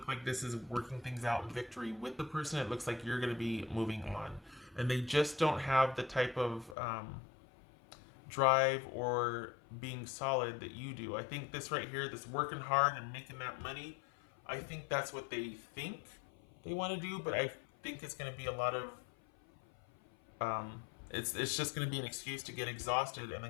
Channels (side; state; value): right; drops out; at 6.8 s